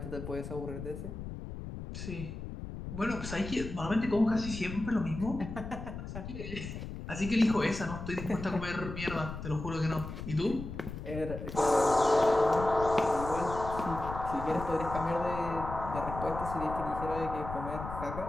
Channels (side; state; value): left; noise; rumble, 8 dB below the sound